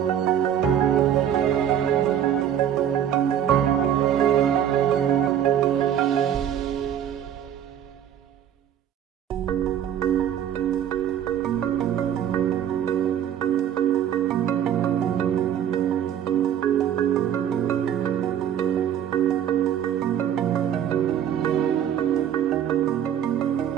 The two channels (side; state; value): left; quieter; 9.8 dB